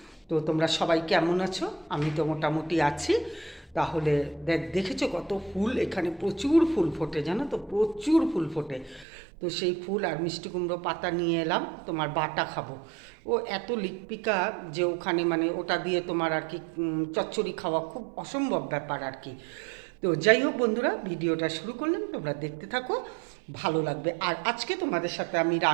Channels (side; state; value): left; drops out; at 9.1 s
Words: তো তোমরা সবাই কেমন আছো? আমি তো মোটামুটি আছি। তাহলে দেখেছো কত ফুল, এখানে প্রচুর ফুল ফোটে, জানো তো, প্রচুর ফুল ফোটে। তো সেই ফুল আর মিষ্টি কুমড়ো পাতা নিয়ে এলাম, তোমার বাটা খাবো। ও এত লিকপিকা যে ওখানে, মানে ওটা দিয়ে তোমার আর কি চচ্চড়ি খাওয়া খুব অসম্ভব ব্যাপার আর কি। তো যাই হোক বন্ধুরা, ভিডিওটা শুরু করলাম, তোমরা দেখতে থাকো, ভালো লাগবে। আর আজকে তোমাদের সাথে আমি